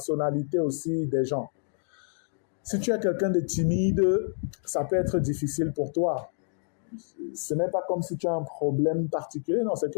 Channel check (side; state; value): right; silent; digital silence